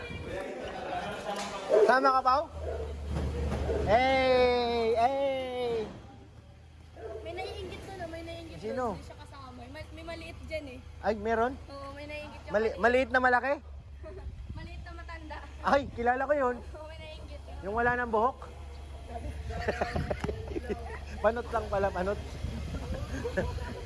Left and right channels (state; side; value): identical; both; correlation 1.00